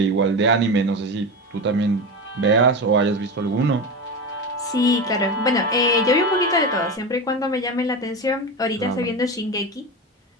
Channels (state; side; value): normal; both; correlation 0.22